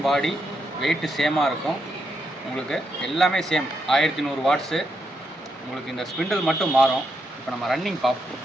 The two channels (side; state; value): both; normal; correlation 0.81